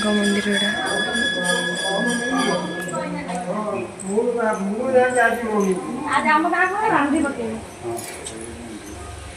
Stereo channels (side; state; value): both; identical; correlation 1.00